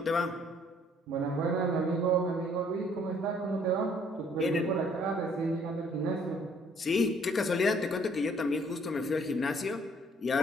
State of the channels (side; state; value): both; normal; correlation 0.61